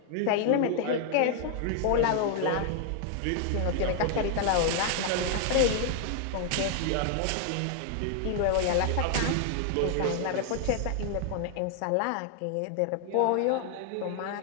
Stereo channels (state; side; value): different; both; correlation 0.00